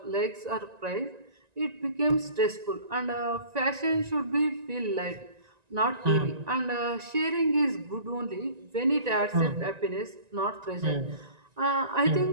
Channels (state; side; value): late; left; 1.9 ms